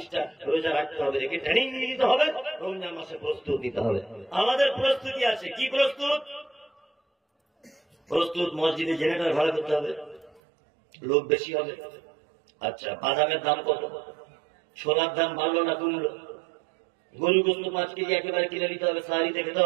রোজা রাখতে হবে, রেখে ট্রেনিং নিতে হবে। রমজান মাসে প্রস্তুত নিতে হবে। আমাদের প্রস্তুতি আছে। কি প্রস্তুত? প্রস্তুত মসজিদে জেনারেটর ভাড়া করতে হবে, লোক বেশি হবে। আচ্ছা, বাদামের দাম কত? সোনার দাম বাড়লো না কমলো? গরু গোস্ত 5 কেজি একেবারে কিনে নিতে হবে, সাহারিতে খেতে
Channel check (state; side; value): drops out; left; at 10.4 s